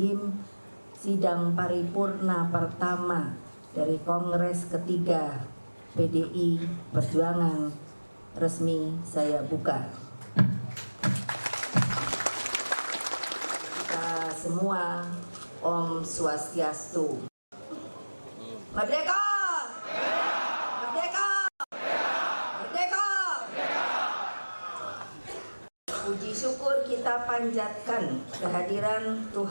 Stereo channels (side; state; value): both; inverted; correlation -1.00